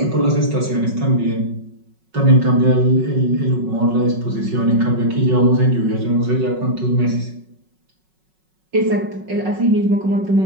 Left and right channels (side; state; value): left; late; 5.4 ms